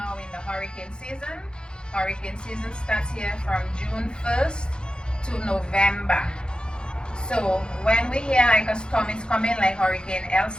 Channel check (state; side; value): late; right; 0.049 ms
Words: in the hurricane season. Hurricane season starts here from June 1st to November. So when we hear like a storm is coming, like Hurricane